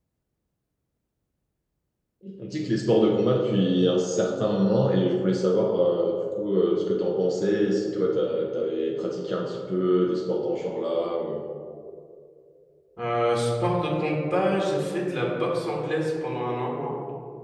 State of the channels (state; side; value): identical; both; correlation 1.00